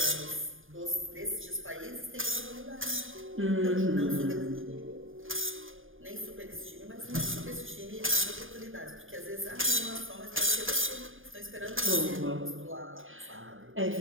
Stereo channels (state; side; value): late; left; 0.59 ms